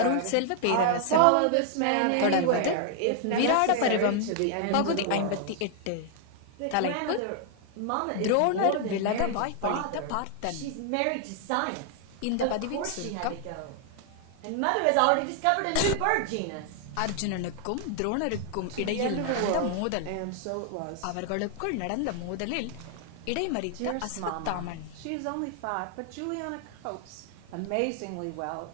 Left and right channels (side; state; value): both; different; correlation 0.00